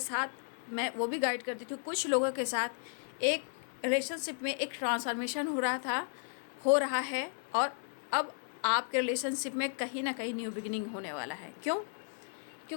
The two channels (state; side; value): silent; right; digital silence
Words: मैं वो भी गाइड करती थी। कुछ लोगों के साथ एक रिलेशनशिप में एक ट्रांसफॉर्मेशन हो रहा है, और अब आपके रिलेशनशिप में कहीं ना कहीं न्यू बिगिनिंग होने वाला है। क्यों?